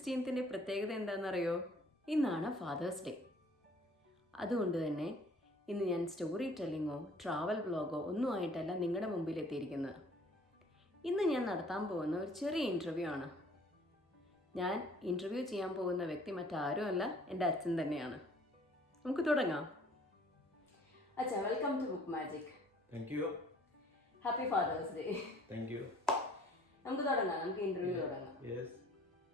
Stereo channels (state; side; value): normal; both; correlation 0.55